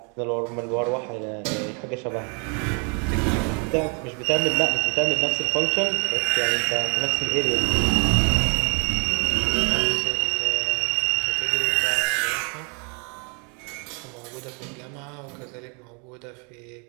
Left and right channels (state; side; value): quieter; left; 36.2 dB